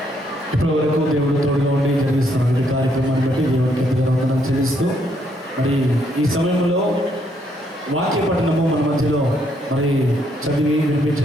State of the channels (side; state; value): both; normal; correlation 0.72